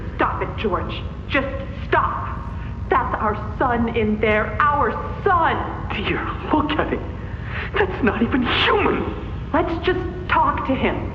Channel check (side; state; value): both; identical; correlation 1.00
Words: Stop it, George. Just stop. That's our son in there. Our son! Dear, look at him. That's not even human. Let's just talk to him.